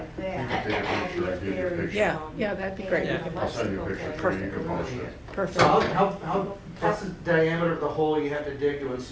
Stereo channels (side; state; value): both; identical; correlation 1.00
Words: You that. can take a picture, That'll be give you a very, picture. Yeah, yeah, that'd be great. Yeah. I'll send you a picture, so you can post it. Perfect. So what's the diameter of the hole you have to dig to